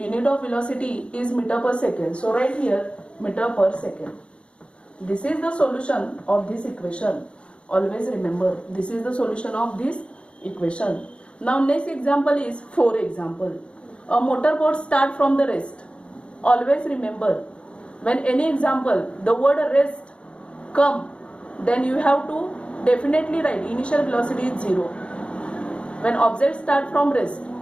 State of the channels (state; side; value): late; right; 0.058 ms